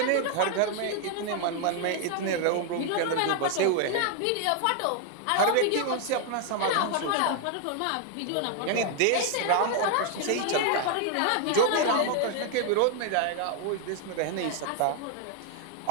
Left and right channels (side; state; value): both; different; correlation 0.00